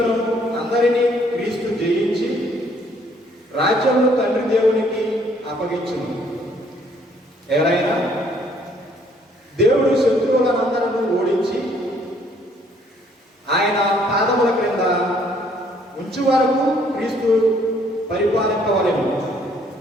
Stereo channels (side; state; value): both; normal; correlation 0.64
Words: అందరినీ క్రీస్తు జయించి రాజ్యమును తండ్రి దేవునికి అప్పగించును. ఎవరైనా దేవుడు శత్రువులనందరూ ఓడించి ఆయన పాదముల క్రింద ఉంచు వరకు క్రీస్తు పరిపాలింపవలెను.